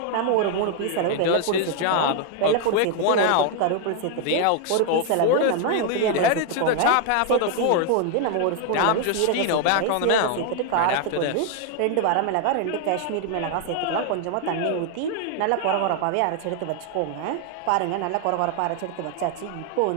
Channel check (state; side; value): different; both; correlation 0.00